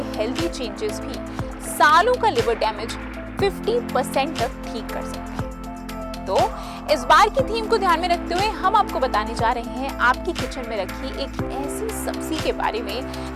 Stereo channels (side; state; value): both; identical; correlation 1.00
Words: हेल्दी चेंजेस भी सालों का लिवर डैमेज 50% तक ठीक कर सकते हैं। तो इस बार की थीम को ध्यान में रखते हुए हम आपको बताने जा रहे हैं आपकी किचन में रखी एक ऐसी सब्जी के बारे में